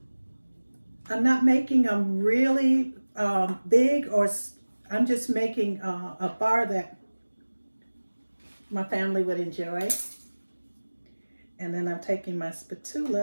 I'm not making them really big, or I'm just making a bar that my family would enjoy. And then I'm taking my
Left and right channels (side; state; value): both; inverted; correlation -1.00